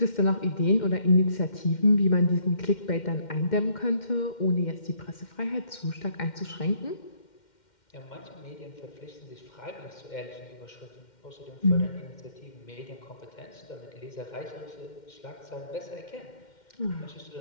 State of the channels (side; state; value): right; late; 2.1 ms